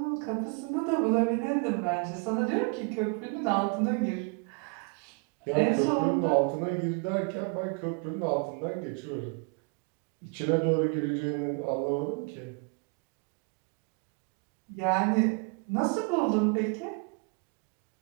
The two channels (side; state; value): left; quieter; 34.2 dB